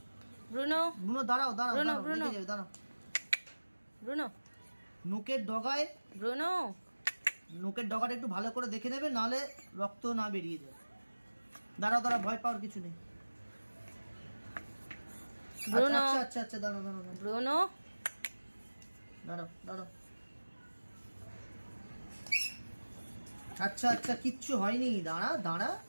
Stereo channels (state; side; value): inverted; both; correlation -1.00